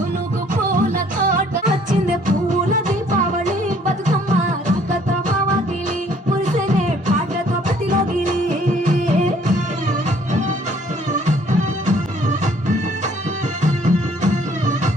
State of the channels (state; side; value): normal; both; correlation 0.60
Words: పూల తోట వచ్చిందే పూల దీపావళి బతుకమ్మ రాకతో మావగిలి పురిసెనే పాటతో ప్రతిలోగిలి